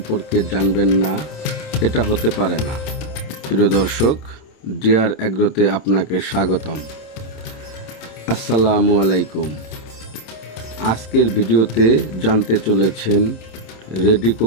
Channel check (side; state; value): right; late; 27 ms